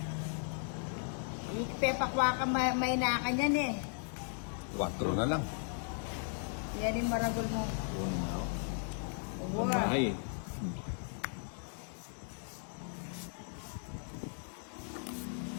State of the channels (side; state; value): right; silent; 53 dB below the other